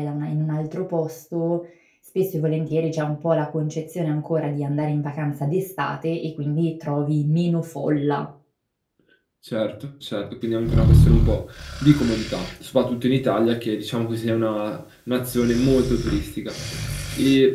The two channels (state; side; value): identical; both; correlation 1.00